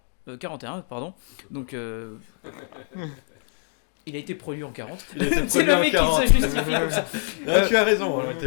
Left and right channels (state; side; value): silent; right; digital silence